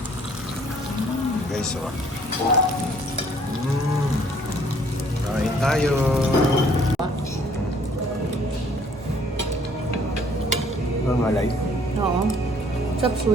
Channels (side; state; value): both; normal; correlation 0.60